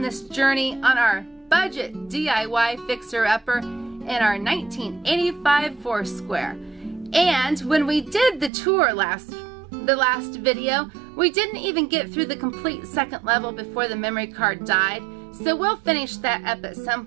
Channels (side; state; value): left; drops out; at 8.5 s